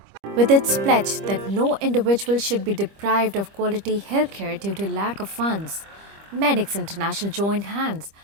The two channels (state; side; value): late; left; 25 ms